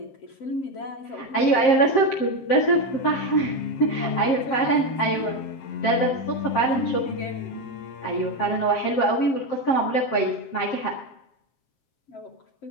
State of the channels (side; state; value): right; late; 7.6 ms